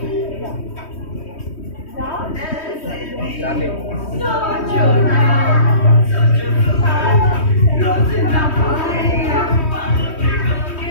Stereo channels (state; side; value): late; right; 3.2 ms